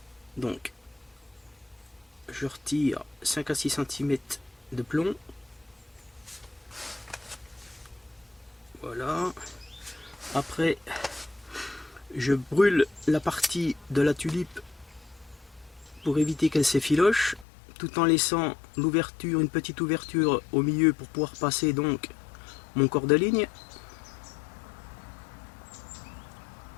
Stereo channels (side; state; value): right; drops out; at 17.4 s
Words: Donc je retire 5 à 6 cm de plomb. Voilà. Après, je brûle la partie de la tulipe pour éviter qu'elle s'effiloche, tout en laissant l'ouverture, une petite ouverture au milieu pour pouvoir passer donc mon corps de ligne.